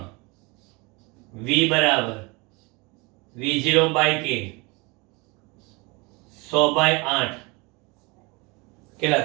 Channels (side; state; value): left; quieter; 27.0 dB